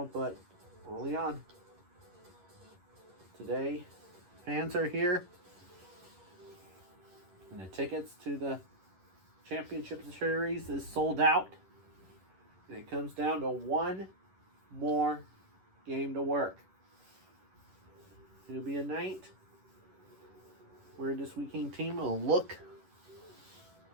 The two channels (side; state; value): left; late; 11 ms